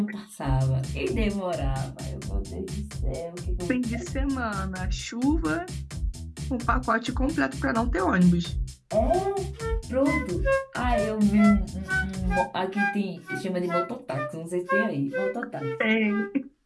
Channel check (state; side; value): identical; both; correlation 1.00